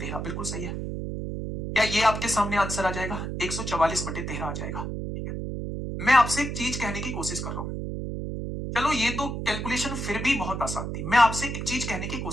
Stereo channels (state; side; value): noise; right; hum, 4 dB below the sound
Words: बिल्कुल सही है। क्या ये आपके सामने आंसर आ जाएगा, 144/13 आ जाएगा। मैं आपसे एक चीज कहने की कोशिश कर रहा हूं, चलो ये तो कैलकुलेशन फिर भी बहुत आसान थी, मैं आपसे एक चीज कहने की